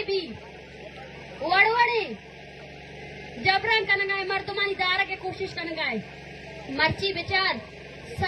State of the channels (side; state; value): both; identical; correlation 1.00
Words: bi Vadvade जबरन कनगाए मर्दमानी दारा के कोशिश कनगाए मर्ची विचार